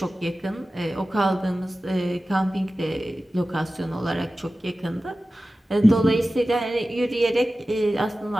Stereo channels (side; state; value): both; normal; correlation 0.95